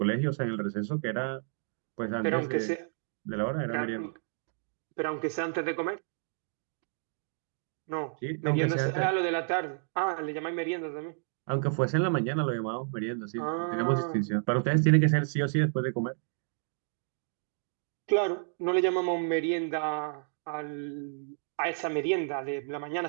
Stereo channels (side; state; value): left; silent; digital silence